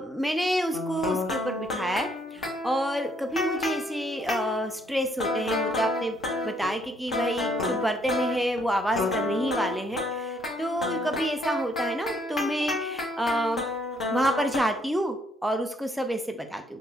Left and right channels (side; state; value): both; normal; correlation 0.68